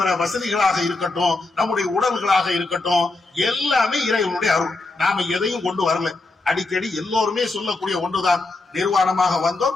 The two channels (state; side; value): quieter; right; 3.3 dB